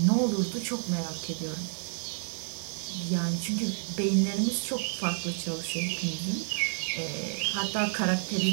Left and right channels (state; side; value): silent; left; 58 dB below the other